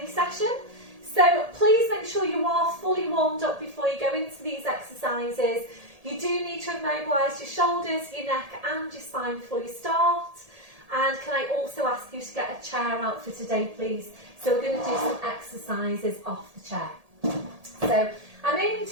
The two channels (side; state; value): left; late; 1.8 ms